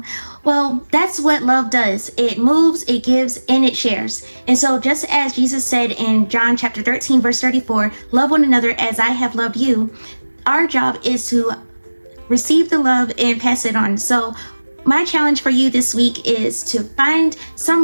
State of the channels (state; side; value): inverted; both; correlation -1.00